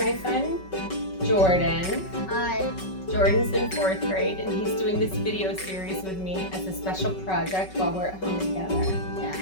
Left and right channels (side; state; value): right; late; 5.3 ms